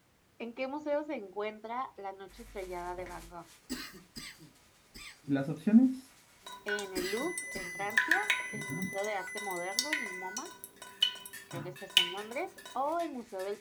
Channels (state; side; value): identical; both; correlation 1.00